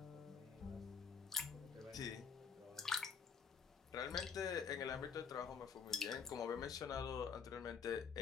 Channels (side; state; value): right; quieter; 6.2 dB